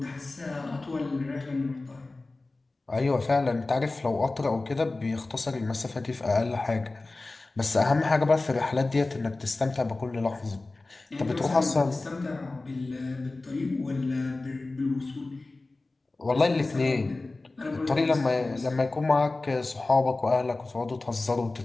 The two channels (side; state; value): right; quieter; 3.2 dB